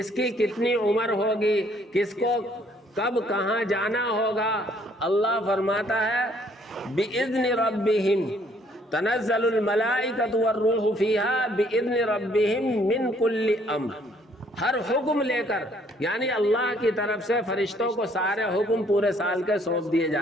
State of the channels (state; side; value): normal; both; correlation 0.64